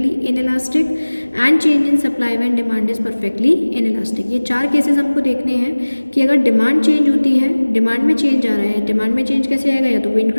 inelastic. And change in supply when demand is perfectly inelastic. ये चार cases हमको देखने हैं कि अगर demand change होती है, demand में चेंज आ रहा है, डिमांड में चेंज कैसे आएगा, या तो वो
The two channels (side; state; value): both; inverted; correlation -1.00